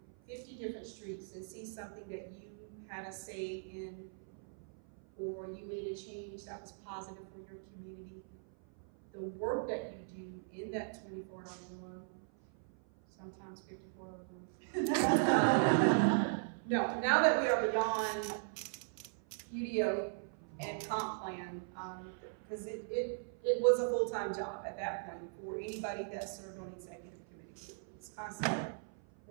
50 different streets and see something that you had a say in, or you made a change that was positive for your community. The work that you do in that 24 hour, sometimes 54 hours. No, now that we are beyond UDO and comp plan, because it was a full-time job at that point for anybody that served on executive committee. It's constant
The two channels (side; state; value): left; silent; 52 dB below the other